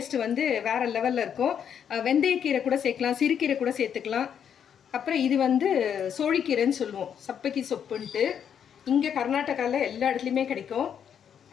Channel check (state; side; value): quieter; right; 8.3 dB